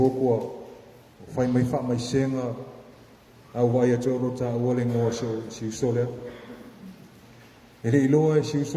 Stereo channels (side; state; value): both; identical; correlation 1.00